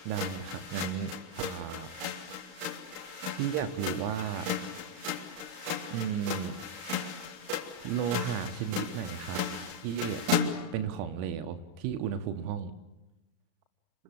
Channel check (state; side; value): late; left; 37 ms